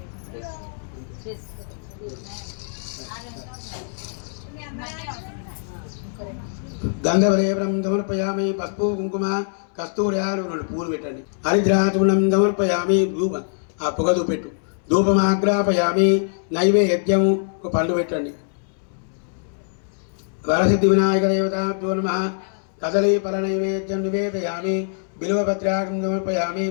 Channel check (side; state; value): right; silent; 63 dB below the other